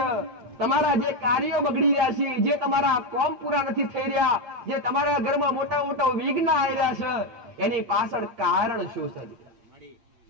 તમારા જે કાર્યો બગડી રહ્યા છે, જે તમારા કોમ પૂરા નથી થઈ રહ્યા, જે તમારા ઘરમાં મોટા મોટા વિઘ્ન આવી રહ્યા છે, એની પાછળ કારણ શું છે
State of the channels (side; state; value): left; late; 8.7 ms